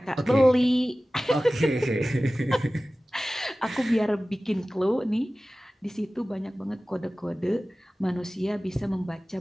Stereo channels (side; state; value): both; normal; correlation 0.97